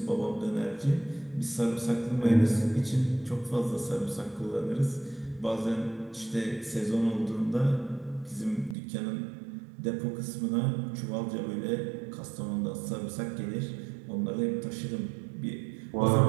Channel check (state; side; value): drops out; left; at 8.8 s